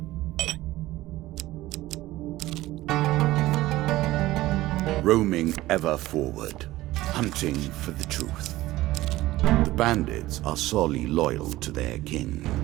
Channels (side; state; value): left; quieter; 17.0 dB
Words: Roaming ever forward, hunting for the truth. The bandits are sorely loyal to their king.